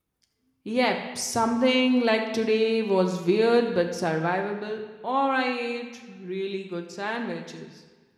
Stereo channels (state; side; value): identical; both; correlation 1.00